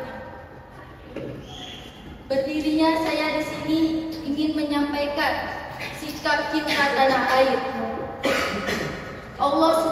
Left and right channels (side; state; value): both; identical; correlation 1.00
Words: Berdirinya saya di sini ingin menyampaikan sikap cinta tanah air. Allah